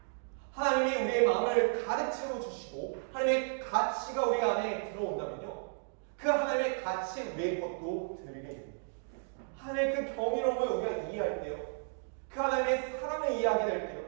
하나님이 우리의 마음을 가득 채워주시고 하나님의 가치가 우리 안에 들어온다면요, 그 하나님의 가치 우리의 것도 드리게 됩니다. 하나님의 그 경이로움을 우리가 이해할 때요, 그 하나님의 사랑을 이해하게 될 때요,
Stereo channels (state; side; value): silent; left; digital silence